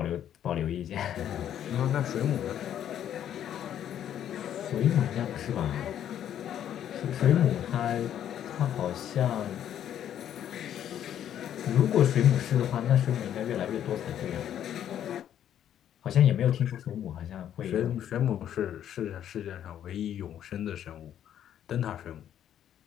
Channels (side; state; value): right; quieter; 10.4 dB